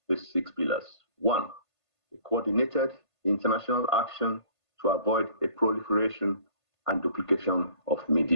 these 6 pillars. 1, a coordinated international action to avoid a proliferation and duplication of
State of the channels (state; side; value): late; right; 1.5 ms